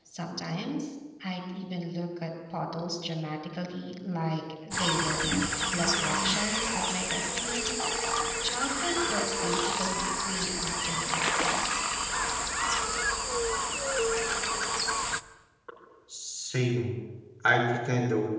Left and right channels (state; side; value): identical; both; correlation 1.00